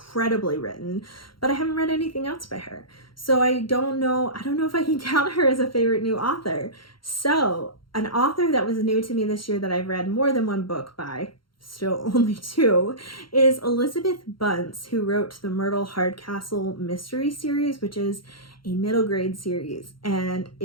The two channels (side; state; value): right; late; 0.73 ms